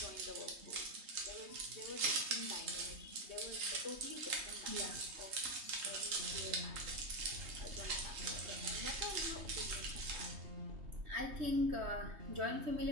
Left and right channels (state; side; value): late; left; 3.2 ms